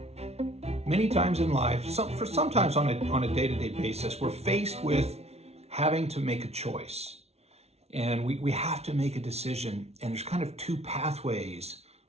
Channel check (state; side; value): late; left; 0.31 ms